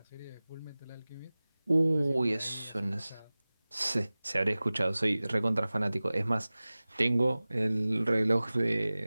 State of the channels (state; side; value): inverted; both; correlation -0.98